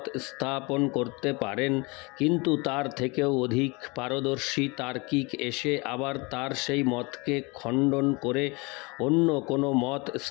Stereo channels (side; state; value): right; quieter; 27.1 dB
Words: স্থাপন করতে পারেন, কিন্তু তার থেকেও অধিক পারদর্শী তার্কিক এসে আবার তার সেই মতকে খণ্ডন করে অন্য কোনো মত